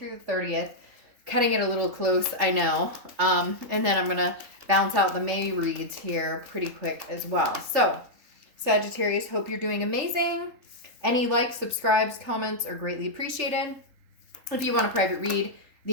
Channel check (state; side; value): late; left; 3.8 ms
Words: the 30th. Cutting it a little close, I know. And then I'm going to bounce out the May reads here pretty quick as well. So, Sagittarius, hope you're doing amazing. Any likes, subscribes, comments are greatly appreciated. If you want a private read,